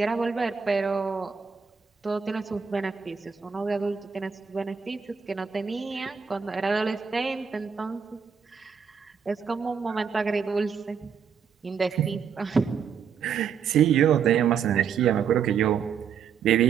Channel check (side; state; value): left; quieter; 6.8 dB